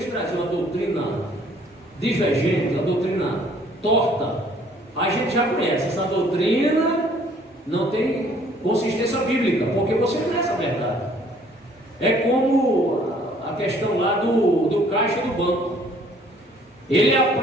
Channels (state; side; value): normal; both; correlation 0.59